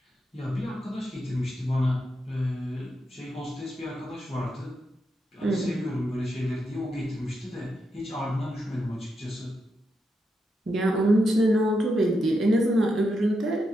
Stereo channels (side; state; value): both; normal; correlation 0.84